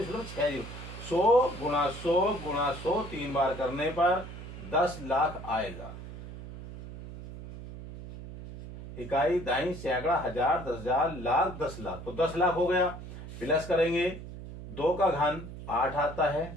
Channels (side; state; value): right; noise; hum, 12 dB below the sound